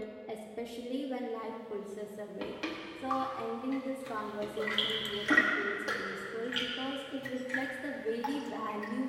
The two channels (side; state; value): both; identical; correlation 1.00